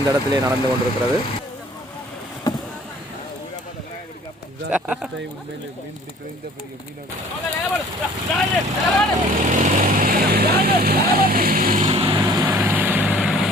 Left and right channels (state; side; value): normal; both; correlation 0.52